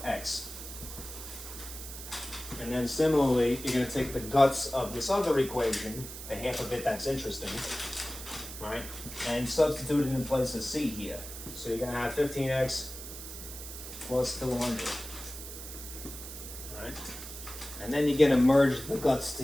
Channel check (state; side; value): noise; right; hiss, 11 dB below the sound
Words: And then similarly, you're going to take the guts of this other equation, the half of it that's interesting, right, and substitute it in place of c here. So you're going to have 15x plus 200. Right? And then you're going to merge the guts